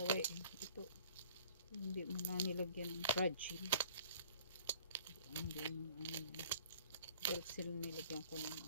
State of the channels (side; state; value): both; inverted; correlation -0.51